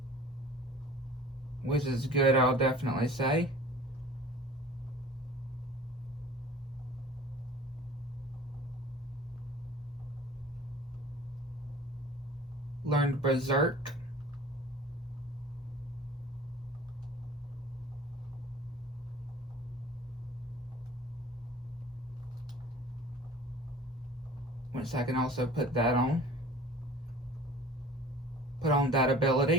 Which is good, I'll definitely say. learned Berserk. Which I can also put that on. Put on that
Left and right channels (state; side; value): normal; both; correlation 0.44